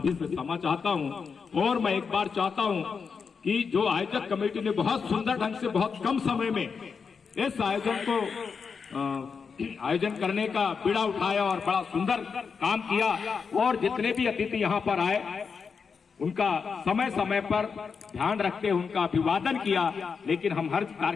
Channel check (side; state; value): right; quieter; 5.7 dB